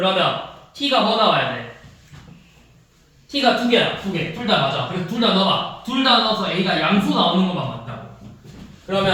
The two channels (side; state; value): both; identical; correlation 1.00